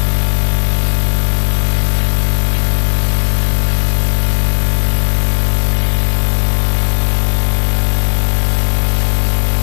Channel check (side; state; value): right; silent; digital silence